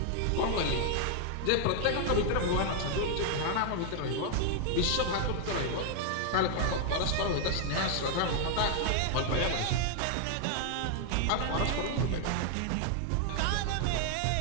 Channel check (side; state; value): both; different; correlation 0.00